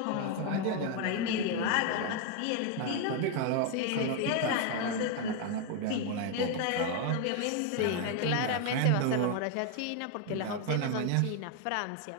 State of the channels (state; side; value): different; both; correlation 0.01